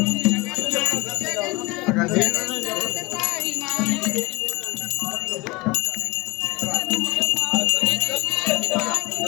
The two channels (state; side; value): quieter; right; 23.5 dB